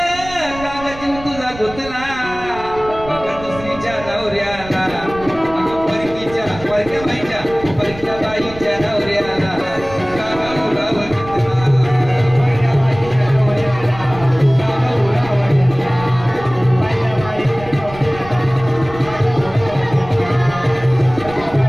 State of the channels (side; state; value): right; noise; rumble, 15 dB below the sound